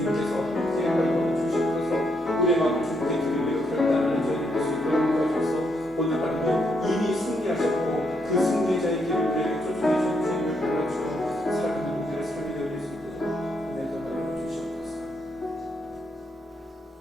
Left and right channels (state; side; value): normal; both; correlation 0.77